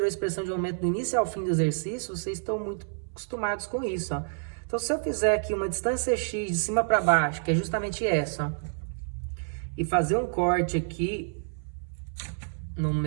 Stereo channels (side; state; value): left; silent; 59 dB below the other